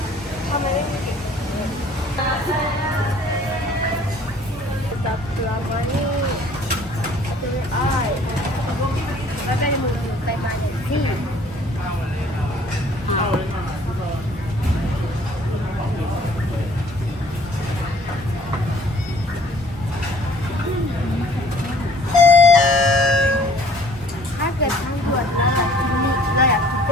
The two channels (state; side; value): normal; both; correlation 0.55